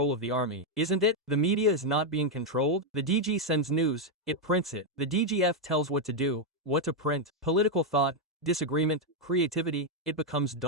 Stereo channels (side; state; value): both; normal; correlation 0.01